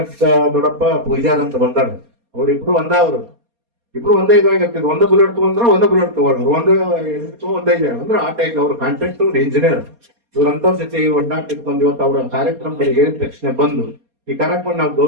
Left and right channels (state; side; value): late; left; 4.2 ms